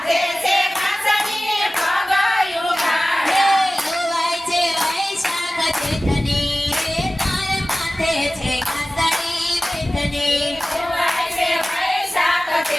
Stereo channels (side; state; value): both; normal; correlation 0.96